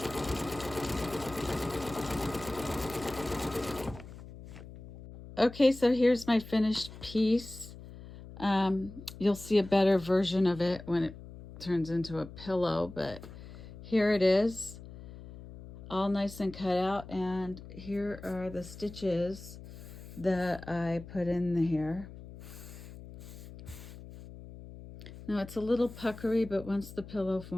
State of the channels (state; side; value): noise; left; hum, 15 dB below the sound